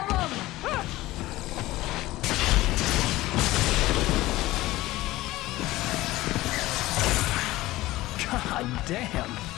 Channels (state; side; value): quieter; right; 17.6 dB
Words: them! God damn!